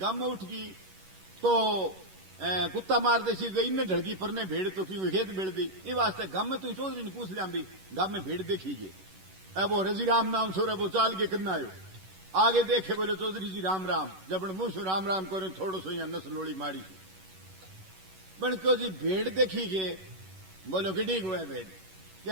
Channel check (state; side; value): late; left; 11 ms